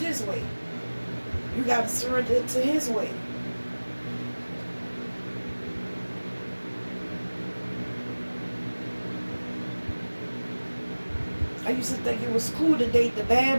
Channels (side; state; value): both; inverted; correlation -1.00